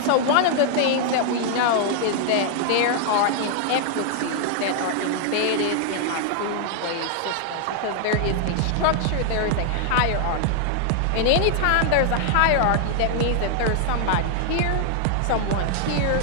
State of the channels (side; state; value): both; different; correlation 0.00